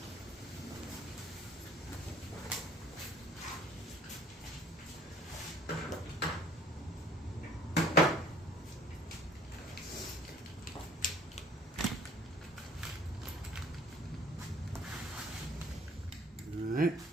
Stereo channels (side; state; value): both; normal; correlation 0.54